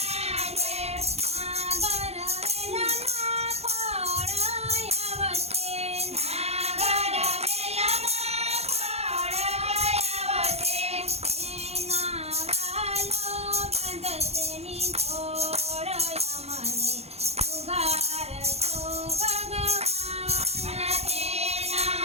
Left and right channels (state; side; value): late; left; 0.30 ms